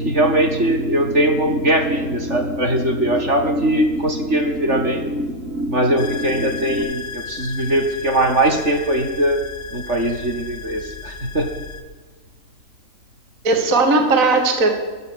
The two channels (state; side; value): late; left; 3.4 ms